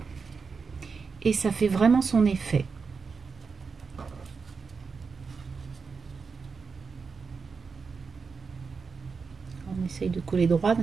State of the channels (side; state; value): left; quieter; 5.2 dB